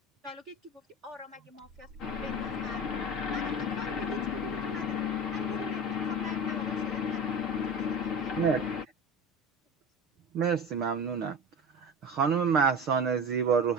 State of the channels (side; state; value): both; normal; correlation 0.31